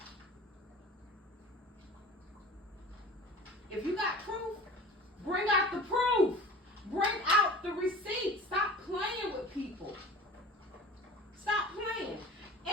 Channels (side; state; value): both; normal; correlation 0.39